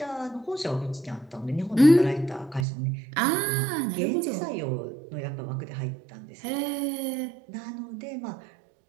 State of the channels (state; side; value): drops out; left; at 2.7 s